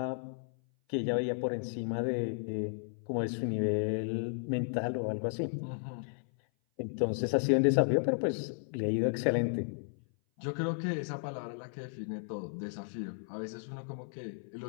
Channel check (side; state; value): right; silent; 55 dB below the other